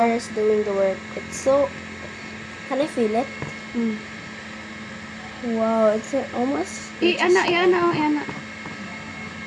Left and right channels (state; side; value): identical; both; correlation 1.00